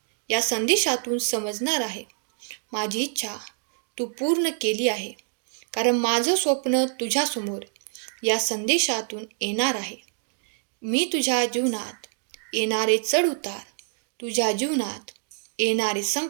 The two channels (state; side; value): silent; left; 56 dB below the other